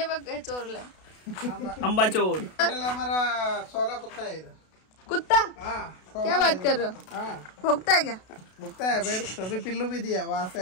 बघ हे चोरलंय. अंबा चोर. टोटल हमारा 16 कुत्ता है इधर. कुत्ता. हाँ क्या बात कर रहे हो. हाँ भोगता है क्या. भुगता है. अभी पिल्लू भी दिया. वहाँ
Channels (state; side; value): late; right; 32 ms